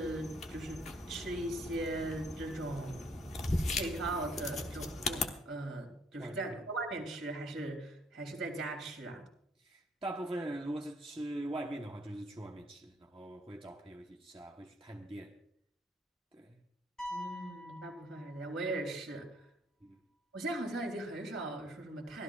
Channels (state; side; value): normal; both; correlation 0.66